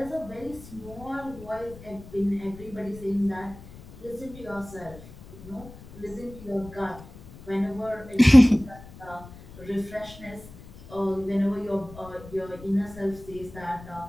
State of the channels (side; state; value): left; noise; rumble, 18 dB below the sound